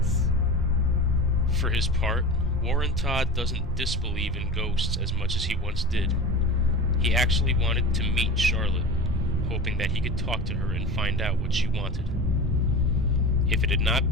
For his part, Warren Todd doesn't disbelieve in ghosts as much as he once did. He actually wanted to meet Charlotte, hoping that he could talk to her and find out what she wanted. If it had not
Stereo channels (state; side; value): normal; both; correlation 0.31